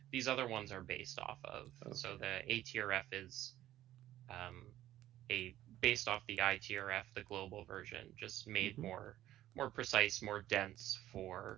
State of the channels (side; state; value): left; quieter; 13.6 dB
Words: these other ones are based off of. So the ATRF is based off the ITRF, the global version, just made more precise, more dense